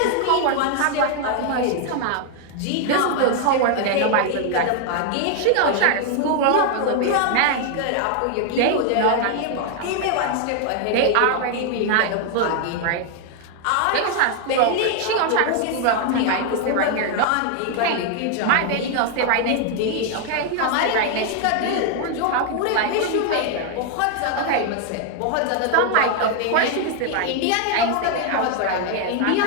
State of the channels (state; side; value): different; both; correlation 0.00